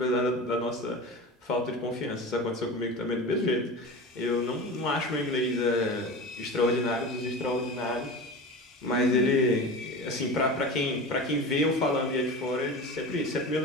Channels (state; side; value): normal; both; correlation 0.30